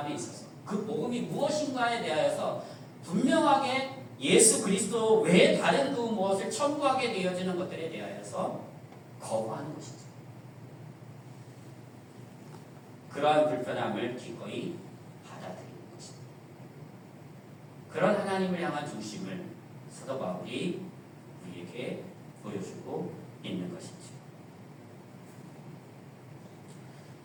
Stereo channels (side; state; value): both; identical; correlation 1.00